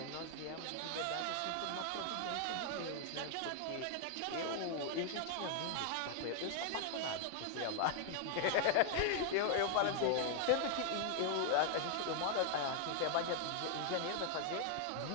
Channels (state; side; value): different; both; correlation 0.00